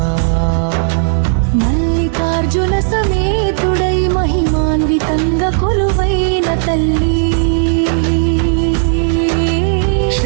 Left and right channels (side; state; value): left; silent; digital silence